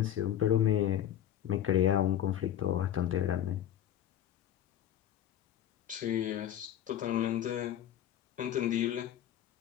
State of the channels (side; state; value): right; quieter; 11.0 dB